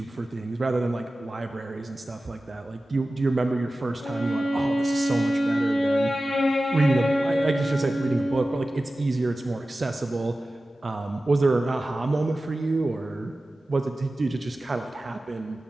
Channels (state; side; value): normal; both; correlation 0.95